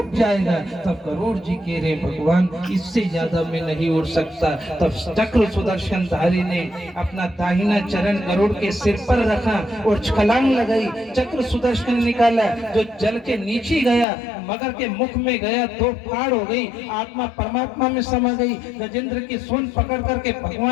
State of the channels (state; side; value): drops out; right; at 14.1 s